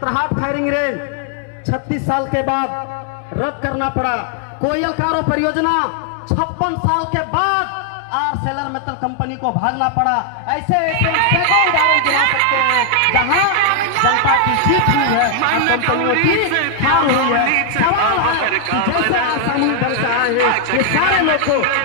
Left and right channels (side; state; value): both; different; correlation 0.00